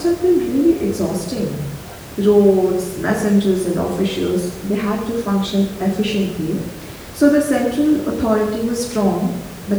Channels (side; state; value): both; identical; correlation 1.00